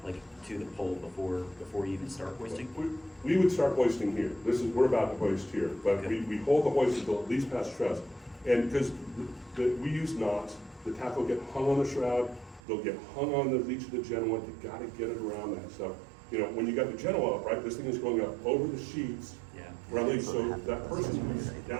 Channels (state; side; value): drops out; left; at 12.6 s